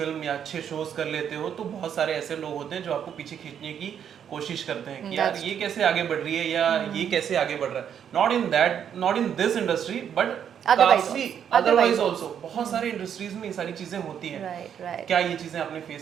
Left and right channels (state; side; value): quieter; left; 8.6 dB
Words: या अच्छे शोज कर लेते हो तो बहुत सारे ऐसे लोग होते हैं जो आपको पीछे खींचने की कोशिश करते हैं कि यार That's ये कैसे आगे बढ़ रही है या ये कैसे आगे बढ़ रहा है, not in this industry but Otherwise काफी also. अदरवाइज ऑल्सो बहुत सारे इंडस्ट्रीज में ये सारी चीजें होती हैं। right. क्या ये चीजें आपने